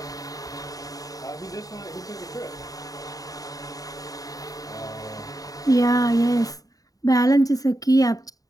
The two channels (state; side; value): late; right; 0.18 ms